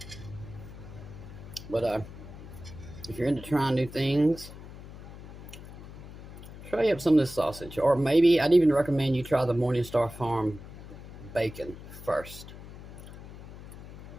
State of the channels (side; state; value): left; noise; hum, 14 dB below the sound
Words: But if you're into trying new things, try up some of this sausage. Or maybe I'd even recommend you try the Morningstar Farm bacon first.